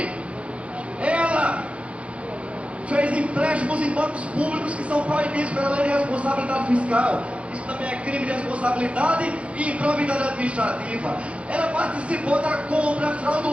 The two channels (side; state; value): left; late; 0.062 ms